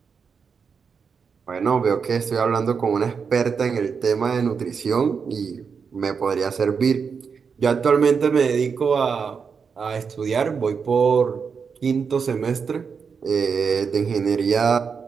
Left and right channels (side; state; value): left; quieter; 5.9 dB